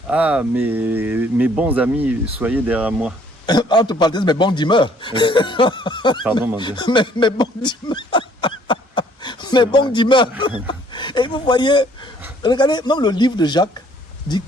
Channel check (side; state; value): both; normal; correlation 0.61